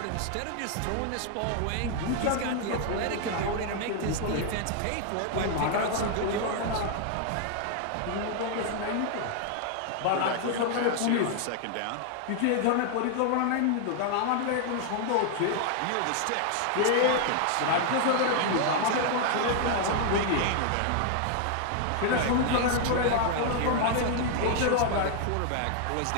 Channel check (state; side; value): different; both; correlation 0.00